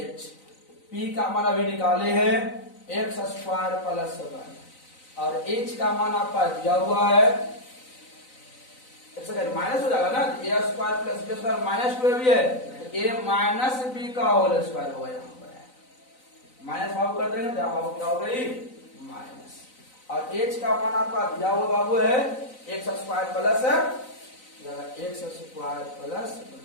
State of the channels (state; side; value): late; right; 3.9 ms